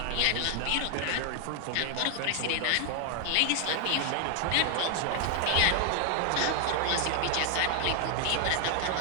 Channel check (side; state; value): both; different; correlation 0.00